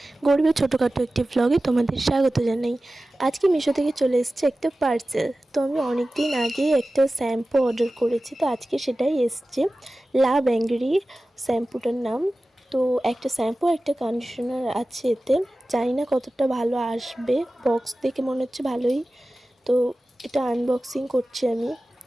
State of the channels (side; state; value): both; normal; correlation 0.96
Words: গরিবের ছোটোখাটো একটি ব্লগে তোমাদের স্বাগত জানাই। আজকে মিশো থেকে চলে এসেছে একটা পার্সেল। তো আমি অনেক দিন আগে একটা শ্যাম্পু অর্ডার করেছি, তো আজকে সেটাই এসছে। লাভ অ্যাংরি শ্যাম্পুটার নাম। তো একটা শ্যাম্পু একটা কন্ডিশনার আছে এতে। জানি না কতটা ভালো আসবে, বক্স দেখে মনে হচ্ছে ভালোই। তো এটা আনবক্সিং করছি আমি।